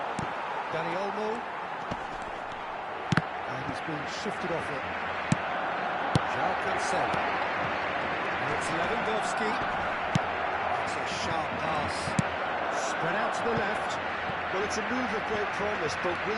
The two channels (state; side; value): identical; both; correlation 1.00